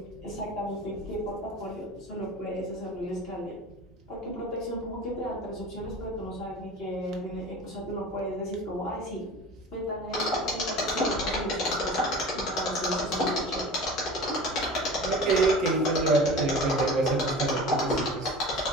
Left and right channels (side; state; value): both; normal; correlation 0.36